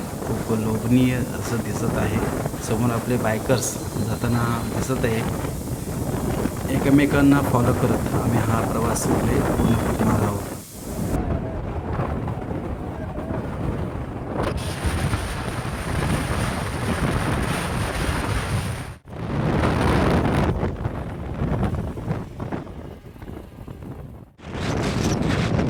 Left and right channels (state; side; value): identical; both; correlation 1.00